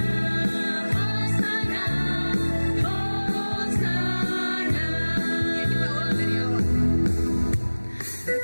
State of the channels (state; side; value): inverted; both; correlation -1.00